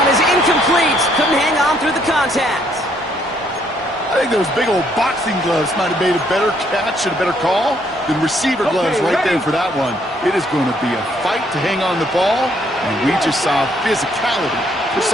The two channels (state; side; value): normal; both; correlation 0.68